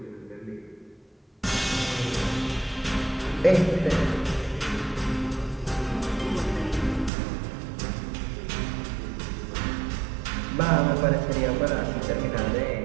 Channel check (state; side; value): drops out; left; at 7.1 s